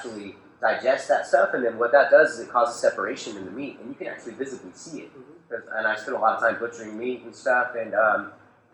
digest that stuff, and then what that does is it causes separation in the meat, and you can actually visibly see it. Mm-hmm. And I spend a lot of time butchering meat and stuff, and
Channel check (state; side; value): identical; both; correlation 1.00